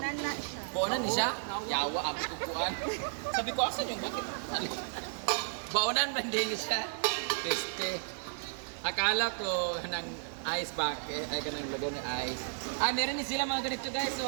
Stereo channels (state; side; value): silent; left; 56 dB below the other